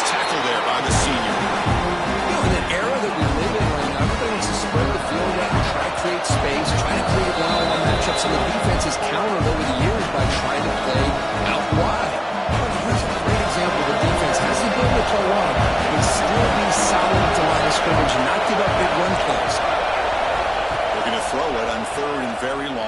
tackle there by the senior. In an era that we live in right now, everybody wants to spread the field out and try to create space, try to create one-on-one matchups, and the defense has countered over the years by trying to play out wide. But here's a great example. The defense has the ability to play wide, but still be solid at the line of scrimmage and not give up big run plays. Looking to throw it on 3rd and very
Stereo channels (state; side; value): identical; both; correlation 1.00